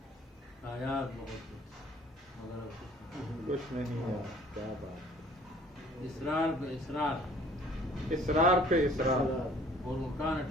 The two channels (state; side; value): normal; both; correlation 0.54